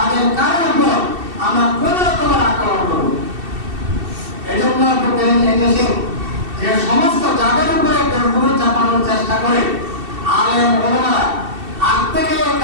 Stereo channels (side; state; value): left; late; 2.7 ms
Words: কারোর উপর আমরা কোন রকমের আক্রমণ করব। এই জন্য এদেশে যে সমস্ত যাদের উপরে গুরু চাপানোর চেষ্টা করে আলেম ওলামারা আগ থেকে